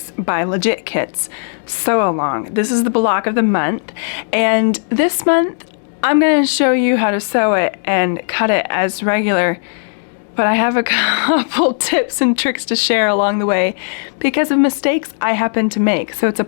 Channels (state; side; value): silent; right; digital silence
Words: by Legit Kits sew along. This is the block of the month, and this month I'm going to show you how to sew it and cut it as regular, but I have a couple tips and tricks to share along the way because of mistakes I happen to make. So it's a